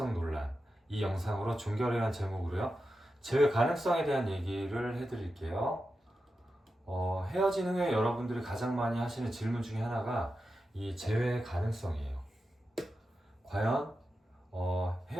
논란 이 영상으로 종결이라는 제목으로요. 재회 가능성에 대한 얘기를 해드릴게요. 헤어진 후에 여러분들이 가장 많이 하시는 질문 중에 하나가 이 재회 가능성이에요. 과연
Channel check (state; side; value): normal; both; correlation 0.90